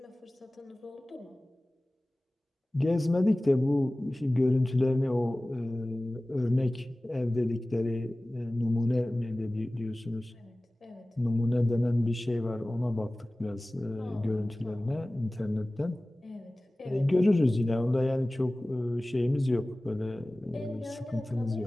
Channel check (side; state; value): both; normal; correlation 0.98